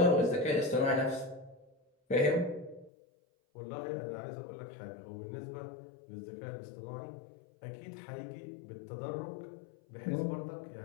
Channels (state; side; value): drops out; right; at 2.9 s